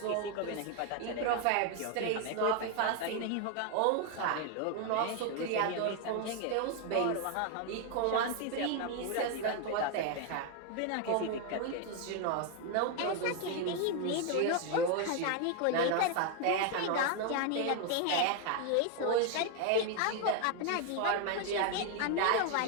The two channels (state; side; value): different; both; correlation 0.01